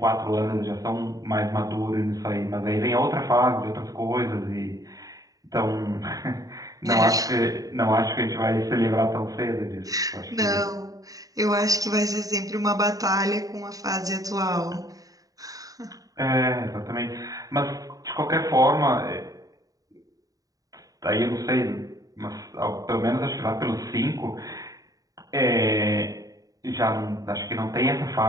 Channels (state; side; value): late; left; 0.17 ms